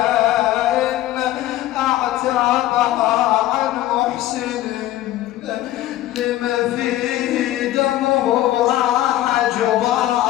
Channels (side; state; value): right; quieter; 14.6 dB